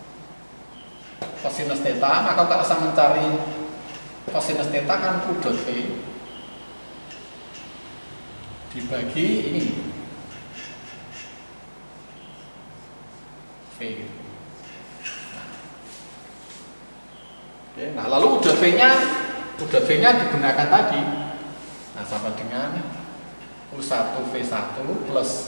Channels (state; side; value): inverted; both; correlation -1.00